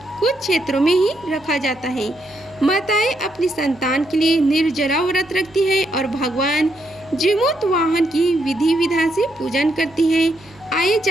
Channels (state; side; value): noise; left; hum, 26 dB below the sound